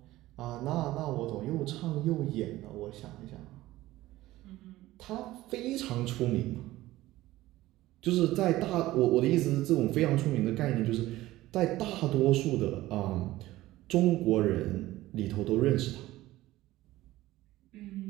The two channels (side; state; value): left; quieter; 16.6 dB